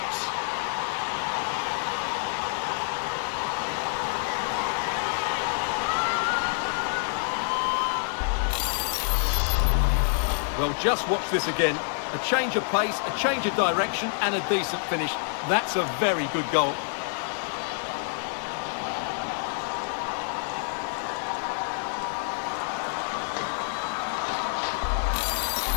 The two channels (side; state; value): right; silent; digital silence